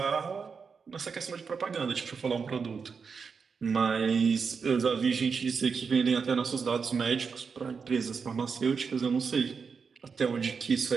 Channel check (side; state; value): left; quieter; 5.6 dB